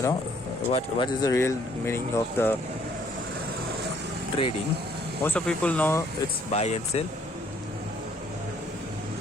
what is the real meaning of the trading, most of people know it's buy and sell,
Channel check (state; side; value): normal; both; correlation 0.63